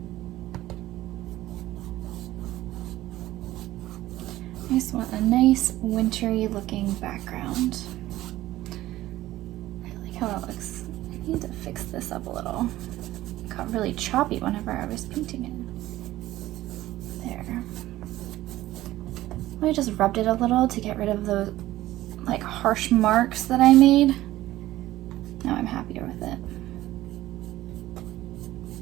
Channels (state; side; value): quieter; left; 15.8 dB